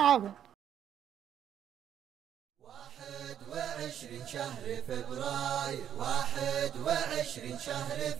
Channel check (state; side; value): quieter; left; 9.7 dB